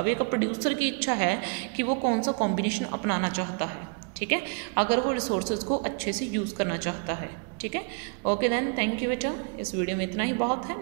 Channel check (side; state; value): left; quieter; 37.6 dB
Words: एक प्रोड्यूसर की इच्छा है कि वो कौन सा कॉम्बिनेशन अपनाना चाहता है। ठीक है, अगर वो रिसोर्सेज को अच्छे से यूज़ करना चाहता है। ठीक है, ओके देन, थैंक यू बेटा। इस वीडियो में इतना ही बहुत है।